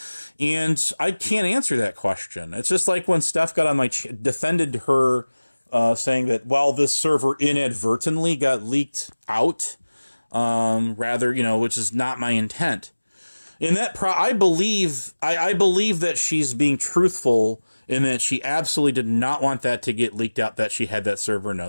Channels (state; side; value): inverted; both; correlation -1.00